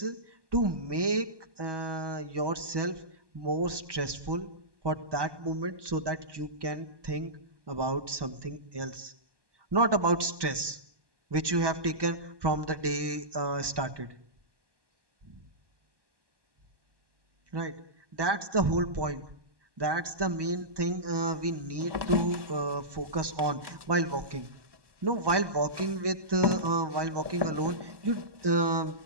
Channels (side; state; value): left; late; 1.1 ms